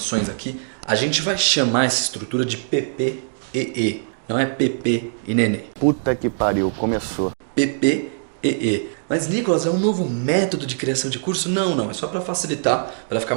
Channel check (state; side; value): silent; left; digital silence